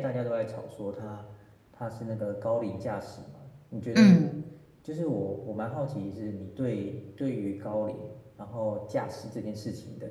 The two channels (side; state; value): both; identical; correlation 1.00